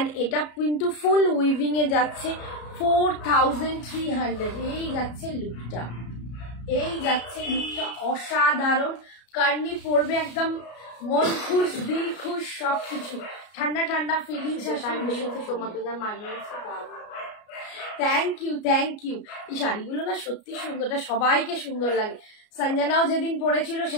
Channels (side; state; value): right; late; 33 ms